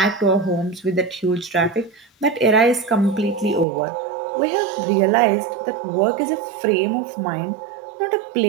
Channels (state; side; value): drops out; left; at 3.7 s